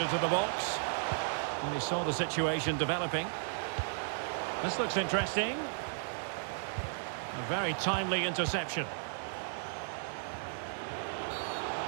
into the box. And he saw the situation developing. This looks interesting. A very timely interception.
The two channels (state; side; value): silent; left; digital silence